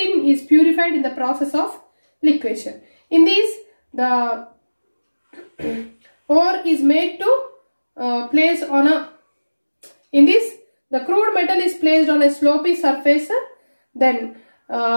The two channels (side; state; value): both; inverted; correlation -1.00